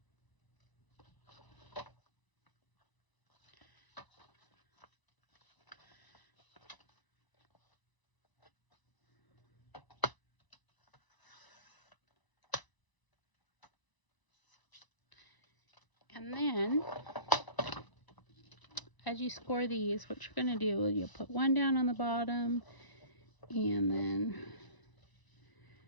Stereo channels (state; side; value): late; right; 1.0 ms